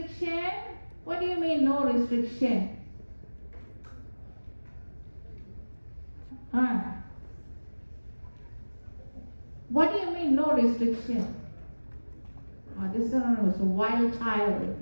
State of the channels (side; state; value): both; inverted; correlation -1.00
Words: What do you mean no restriction? What do you mean no restriction? This one was a wild